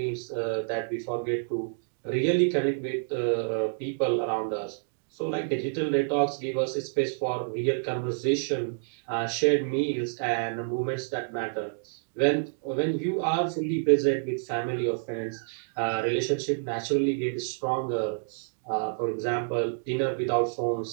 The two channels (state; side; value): silent; left; digital silence